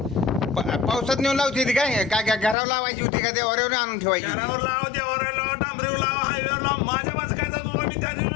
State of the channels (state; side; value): drops out; right; at 2.6 s